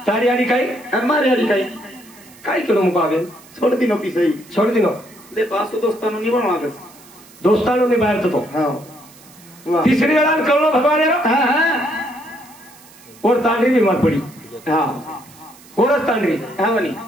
तारी आडी काय मार याडी काही काय केलो मुको आवे सोड दिनो पिसई छोड दिनो दे पासो दोस्तानो निवण मागस दोस्तानो ने बाहेरचं तो हा वा तिसरी वेळा कळलो भगवान हा हा और तांडरी बीमार पडी हा कोरच तांडरी हा म्हणे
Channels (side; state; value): right; noise; hiss, 24 dB below the sound